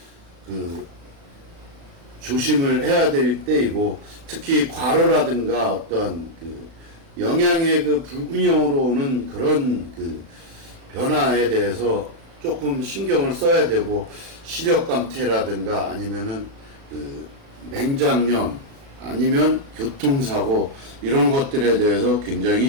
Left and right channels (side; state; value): left; late; 36 ms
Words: 조심을 해야 될 때이고, 특히 과로라든가 어떤 영양의 불균형으로 오는 그런 변화에 대해서 조금 신경을 써야 되고, 시력감퇴라든가 아니면은 맹장염 아니면 교통사고 이런 것들에 대해서